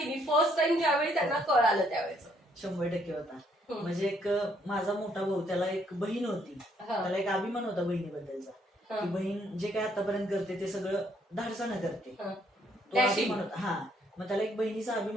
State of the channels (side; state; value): both; normal; correlation 0.69